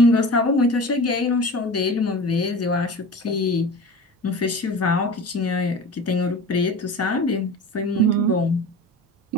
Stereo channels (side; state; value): both; normal; correlation 0.35